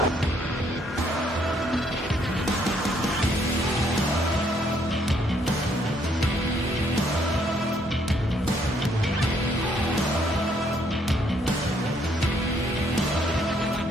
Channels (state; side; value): normal; both; correlation 0.69